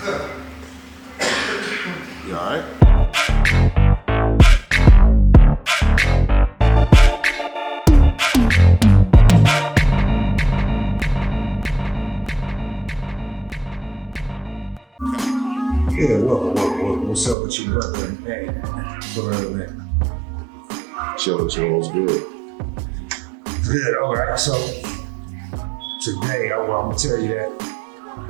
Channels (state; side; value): drops out; left; at 17.4 s